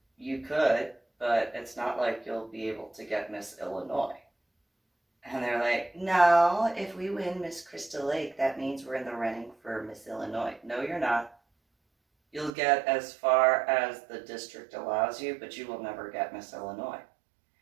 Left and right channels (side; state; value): left; drops out; at 12.5 s